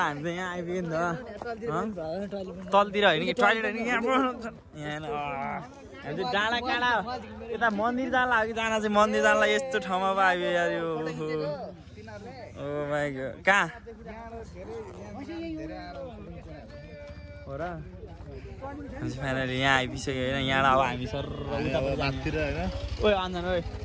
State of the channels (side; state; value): both; identical; correlation 1.00